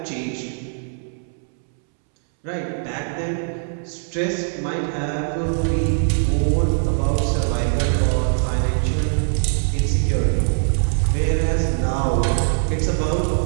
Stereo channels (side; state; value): left; silent; 65 dB below the other